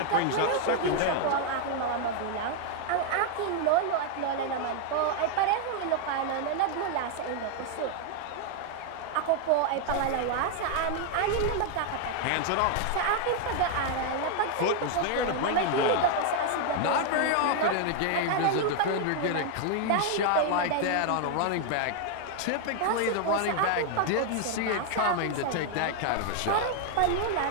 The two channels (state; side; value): different; both; correlation 0.00